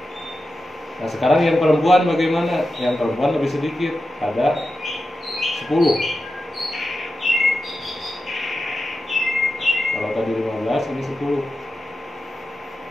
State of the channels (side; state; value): both; normal; correlation 0.91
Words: Nah sekarang yang perempuan bagaimana? Yang perempuan lebih sedikit, ada 10. Kalau tadi 15, ini 10.